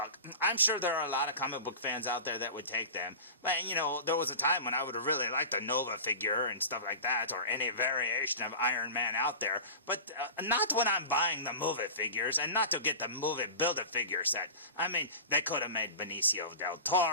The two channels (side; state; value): both; inverted; correlation -0.32